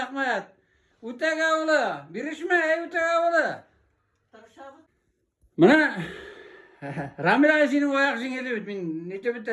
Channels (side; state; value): both; identical; correlation 1.00